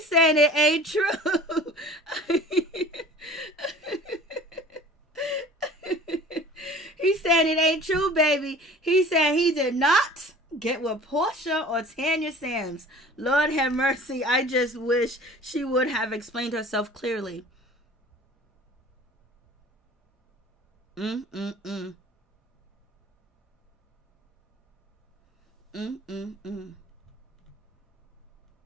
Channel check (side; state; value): both; normal; correlation 0.45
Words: saying it ain't true. He's saying it ain't true, baby. He said he did not get with Porsha or Tanya Sam. Lord have mercy. I just wish she would have explained herself clearly.